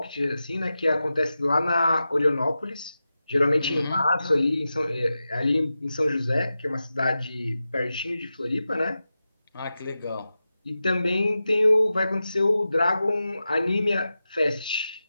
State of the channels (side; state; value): both; inverted; correlation -0.92